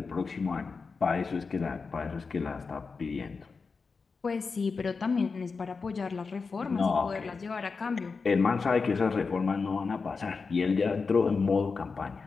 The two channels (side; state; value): right; quieter; 4.7 dB